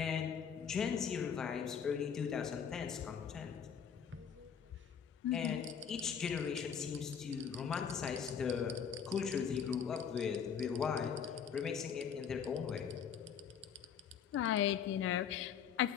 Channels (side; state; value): right; quieter; 7.4 dB